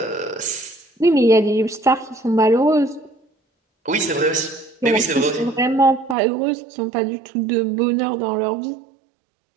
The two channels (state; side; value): drops out; left; at 6.2 s